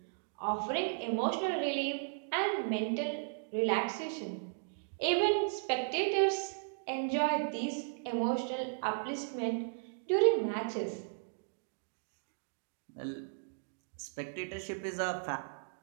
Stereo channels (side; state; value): left; silent; digital silence